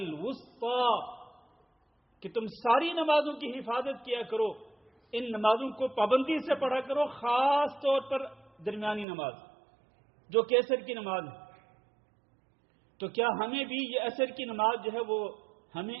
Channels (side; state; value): left; drops out; at 9.1 s